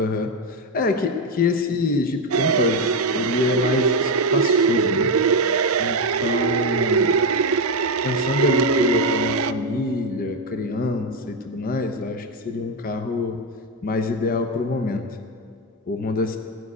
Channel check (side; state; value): both; normal; correlation 0.07